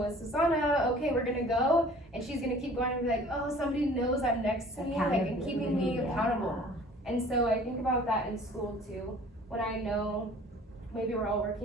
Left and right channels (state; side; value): normal; both; correlation 0.49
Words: with Susanna, okay, we're gonna go, and she's gonna keep going and be like, oh, somebody knows I'm next to me, like, and keeping me accountable. And so I think about that in school too, when I know maybe we're all